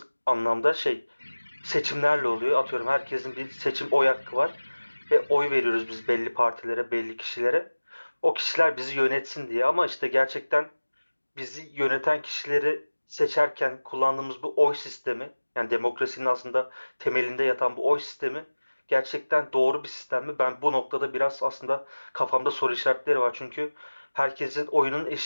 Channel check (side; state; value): both; inverted; correlation -1.00